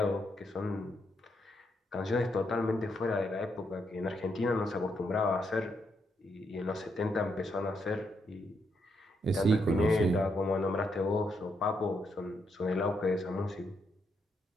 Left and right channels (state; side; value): normal; both; correlation 0.78